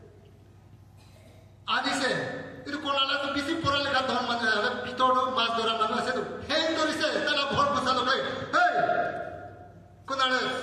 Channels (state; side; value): identical; both; correlation 1.00